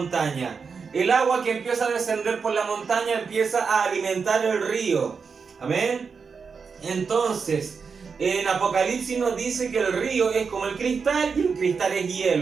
El agua que empieza a descender por la montaña empieza a alimentar el río. Amén. Entonces, en Apocalipsis nos dice que el río es como el cristal y el cristal es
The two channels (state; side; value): quieter; left; 5.5 dB